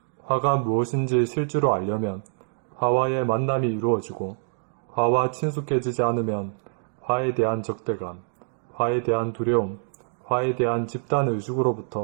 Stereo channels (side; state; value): left; silent; digital silence